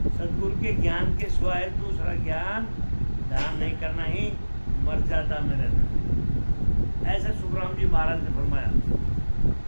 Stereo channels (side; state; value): both; inverted; correlation -1.00